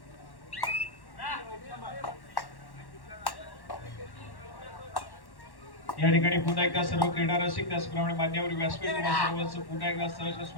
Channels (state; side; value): late; right; 1.1 ms